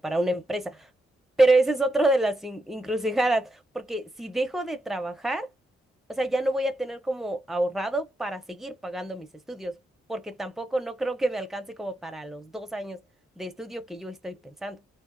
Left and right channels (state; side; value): normal; both; correlation 0.85